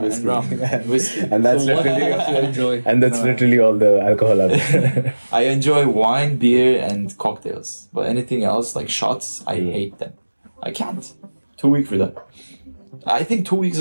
whiskey. rum and whiskey. And that's So what do you literally, enjoy? and that's No. literally all the alcohol out there. I enjoy wine, beer, and cocktails. But anything else, like shots, I hate them. I can't. Too weak for that. I think 2 weeks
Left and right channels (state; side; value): inverted; both; correlation -1.00